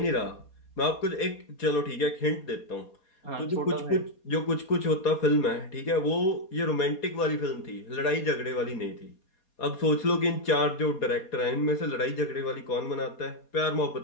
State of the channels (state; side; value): late; right; 4.2 ms